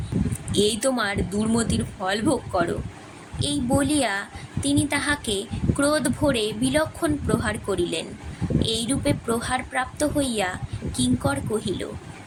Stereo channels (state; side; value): identical; both; correlation 1.00